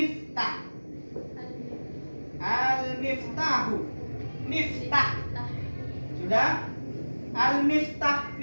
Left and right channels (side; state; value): both; inverted; correlation -1.00